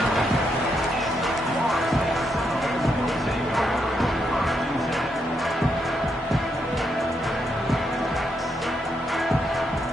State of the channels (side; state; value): both; normal; correlation 0.79